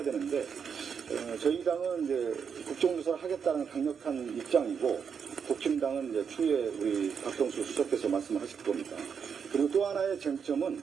되는데 저희 당은 이제 국정조사를 하겠다는 강력한 입장이고 국힘당은 이제 추후에 우리 박병수 수석께서 말씀하실 겁니다. 그리고 또 하나의 쟁점은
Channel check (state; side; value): quieter; left; 6.7 dB